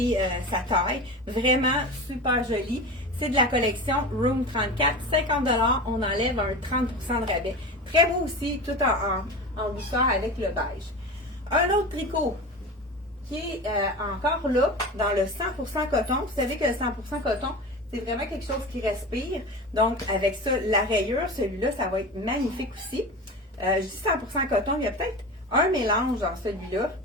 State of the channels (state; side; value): normal; both; correlation 0.29